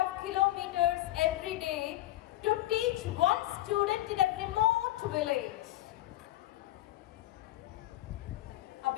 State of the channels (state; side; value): quieter; right; 15.7 dB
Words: kilometers every day to teach one student in a remote village. A